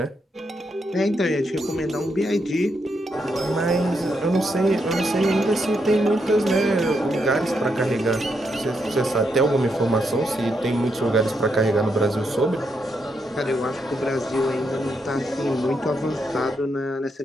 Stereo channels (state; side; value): normal; both; correlation 0.80